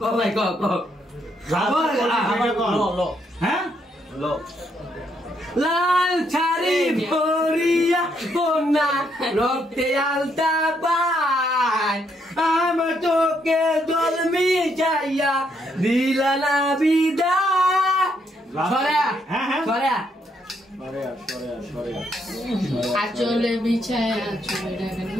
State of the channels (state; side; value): normal; both; correlation 0.74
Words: ক ভাই ক ক হ্যাঁ ল লাল ছাড়ি ভরিয়া কন্যা রক্তে আলতা পায়, আমার চোখে জল মিশাইয়া দিলা না বিদায়। সরে হ্যাঁ হ্যাঁ সরে আচলে বিছায় আচলে ডাকেন